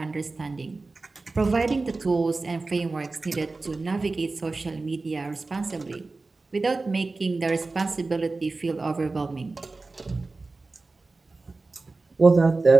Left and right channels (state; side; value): quieter; left; 3.6 dB